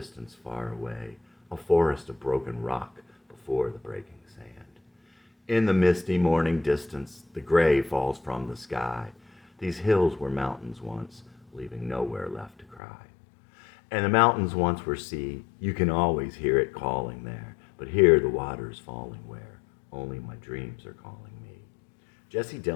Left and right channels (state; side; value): drops out; right; at 12.8 s